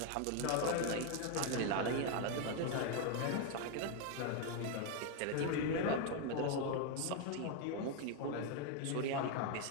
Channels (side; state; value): both; different; correlation 0.01